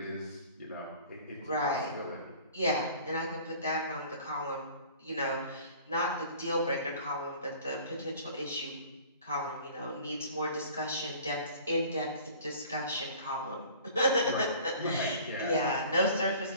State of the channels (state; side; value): inverted; both; correlation -0.47